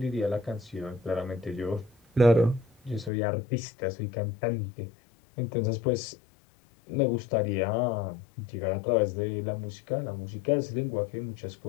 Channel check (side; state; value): right; drops out; at 3.1 s